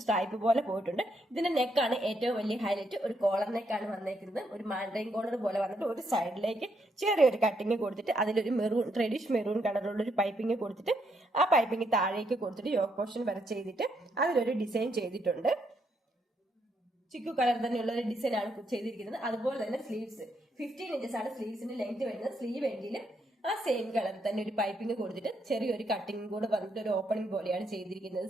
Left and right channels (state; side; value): normal; both; correlation 0.76